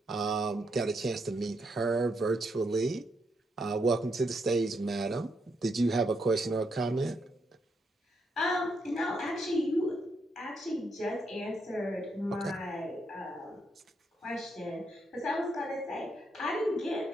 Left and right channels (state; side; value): normal; both; correlation 0.78